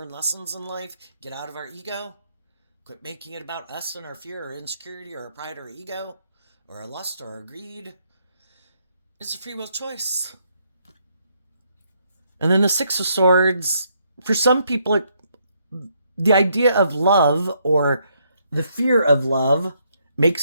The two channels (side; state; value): both; inverted; correlation -0.73